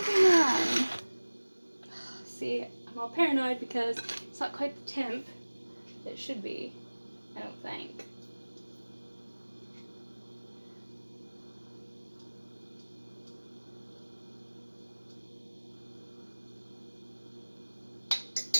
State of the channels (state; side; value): inverted; both; correlation -1.00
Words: on. See, I'm all paranoid because it's not quite the temp that it should be, I don't think.